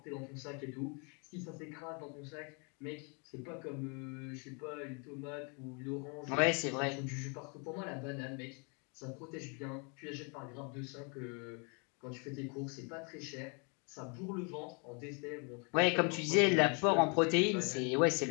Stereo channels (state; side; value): quieter; right; 34.9 dB